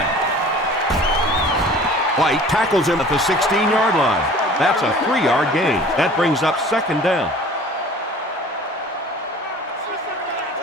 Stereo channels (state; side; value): normal; both; correlation 0.46